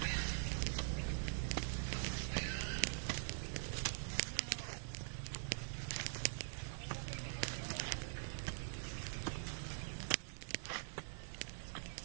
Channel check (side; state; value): left; silent; digital silence